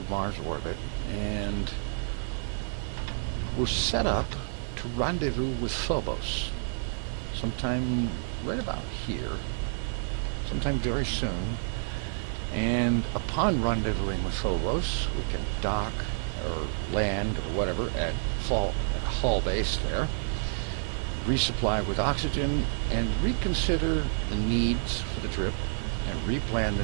Mars orbit and we're set up to rendezvous with Phobos sometime right about here, sometime very soon. And upon rendezvousing with Phobos, we can dock or land or whatever at Hall base there, resupply with oxygen, and reconsider the needs for the trip and replan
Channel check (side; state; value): left; silent; digital silence